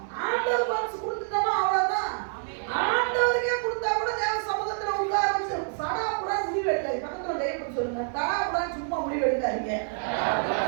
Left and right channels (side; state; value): left; silent; 60 dB below the other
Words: ஆண்டவர் மனசு கொடுத்துட்டோமா அவ்வளவுதான். ஆண்டவருக்கே கொடுத்தா கூட தேவ சமூகத்துல உட்கார வச்சு சடா கூட முடிவு எடுக்காது. பக்கத்துல கைப்பற்றி சொல்லுங்க, தடா கூட சும்மா முடிவு எடுக்காதீங்க.